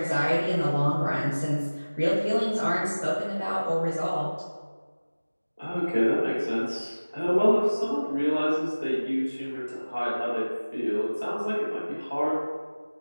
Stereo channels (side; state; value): both; inverted; correlation -1.00